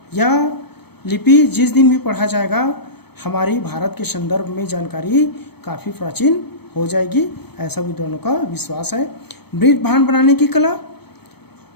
यह लिपि जिस दिन भी पढ़ा जाएगा हमारी भारत के संदर्भ में जानकारी काफ़ी प्राचीन हो जाएगी, ऐसा विद्वानों का विश्वास है। मृत भांड बनाने की कला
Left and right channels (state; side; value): late; right; 0.97 ms